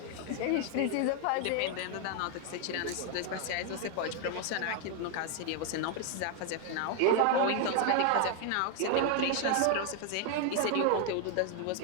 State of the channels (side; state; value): both; different; correlation 0.00